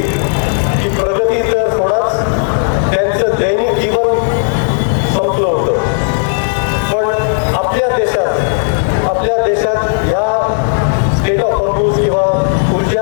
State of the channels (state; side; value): silent; right; digital silence